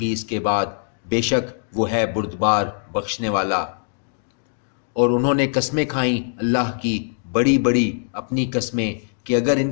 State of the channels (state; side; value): silent; right; digital silence